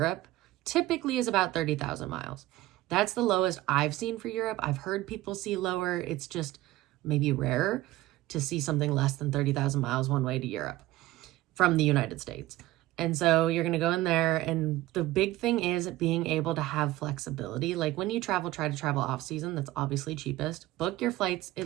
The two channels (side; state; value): left; quieter; 16.7 dB